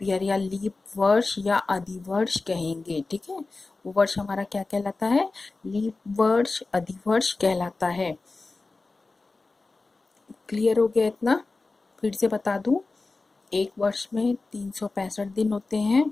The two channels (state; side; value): quieter; right; 3.6 dB